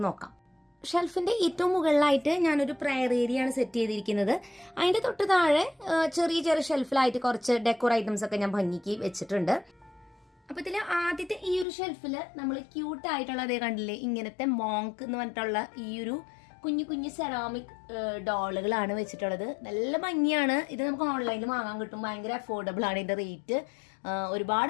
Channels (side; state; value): right; drops out; at 11.7 s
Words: നോക്കാം. ഷെൽഫിന്റെ ഏറ്റവും മുകളിലായിട്ട് ഞാനൊരു പ്രയർ ഏരിയ ആണ് സെറ്റ് ചെയ്തിരിക്കുന്നത്. അതിന്റെ തൊട്ട് താഴെ ചെറിയ ചെറിയ ഷെൽഫിലായിട്ട് കുറച്ച് ഡെക്കോർ ഐറ്റംസ് ഒക്കെ ഞാൻ ഭംഗിക്ക് വെച്ചിട്ടുണ്ട്. അപ്പൊ ഇതില് ആദ്യത്തെ ഈ ഒരു ഷെൽഫില് നമ്മൾ ക്യൂട്ട് ആയിട്ടുള്ള അതേ കണ്ടില്ലേ, ഇങ്ങനത്തെ മോങ്ക് എന്ന് പറഞ്ഞിട്ടുള്ള ഈ ഒരു കുഞ്ഞു കുഞ്ഞു സെറാമിക് ഡോളുകളാണ് വെച്ചിട്ടുള്ളത്. നല്ല ഭംഗിയാണ്. ഇത് നമുക്ക് ഓൺലൈനിൽ വാങ്ങാൻ കിട്ടും. ഭയങ്കര അഫോർഡബിൾ ആണ് ഇതിന്റെ റേറ്റ്.